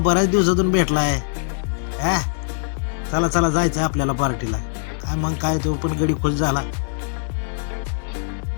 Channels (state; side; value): silent; right; digital silence